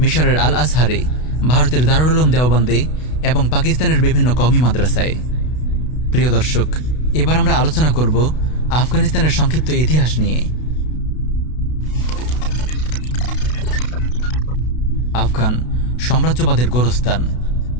মিশরের আল আজহারে, ভারতের দারুল উলুম দেওবন্দে এবং পাকিস্তানের বিভিন্ন কওমি মাদ্রাসায়। প্রিয় দর্শক, এবার আমরা আলোচনা করব আফগানিস্তানের সংক্ষিপ্ত ইতিহাস নিয়ে। আফগান সাম্রাজ্যবাদের গোরস্থান।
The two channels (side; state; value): right; late; 32 ms